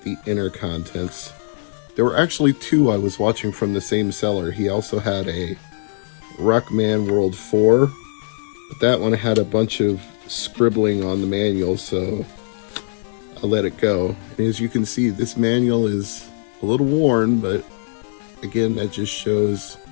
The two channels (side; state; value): right; silent; digital silence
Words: the inner contents. There were actually two I was watching from the same seller. He also had a Rockman World 4, but that one had a bunch of scribbling on the manual, so I let it go. And as you can see, this manual is a little worn, but again, that just shows